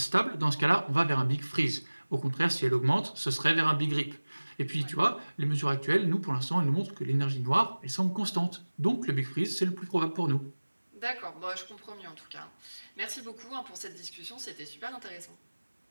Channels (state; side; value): inverted; both; correlation -1.00